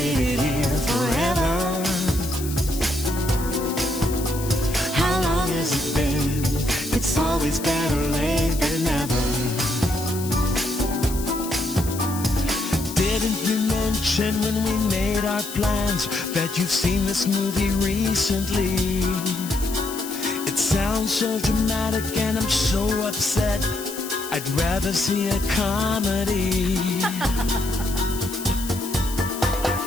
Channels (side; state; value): left; noise; hiss, 11 dB below the sound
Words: here forever. How long has it been? It's always better late than never. Didn't you mention when we made our plans that you've seen this movie recently? It sounds so dramatic and I'm so upset. I'd rather see a comedy.